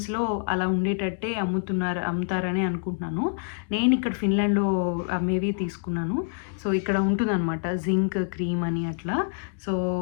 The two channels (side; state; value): right; silent; digital silence